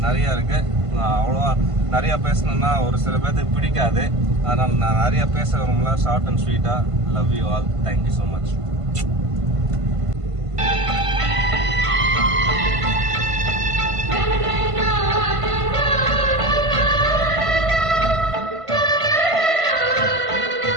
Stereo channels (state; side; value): late; left; 1.5 ms